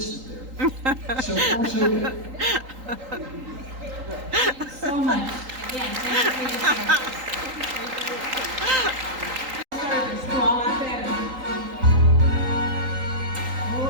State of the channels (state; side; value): late; left; 3.8 ms